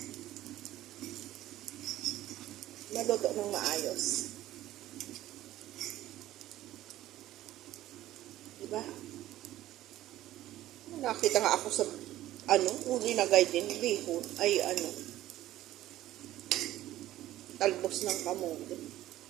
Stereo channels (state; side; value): quieter; left; 14.5 dB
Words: Maluto ng maayos. Diba? Nakita nga ako sa uli na guide din, bihon, ay talbos ng kamote.